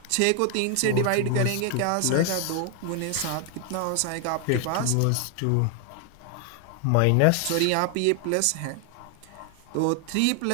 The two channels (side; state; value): both; different; correlation 0.00